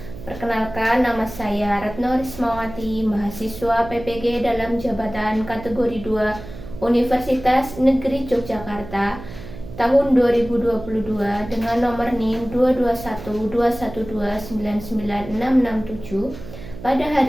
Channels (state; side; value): noise; right; hum, 13 dB below the sound